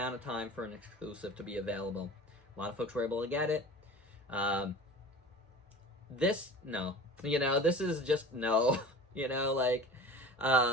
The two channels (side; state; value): both; normal; correlation 0.39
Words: of time for an exclusive to be available. A lot of folks were able to get it. This, no. This is just no.